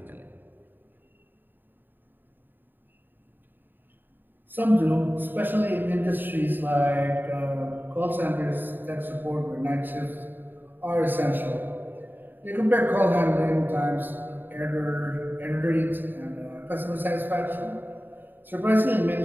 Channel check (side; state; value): left; late; 0.092 ms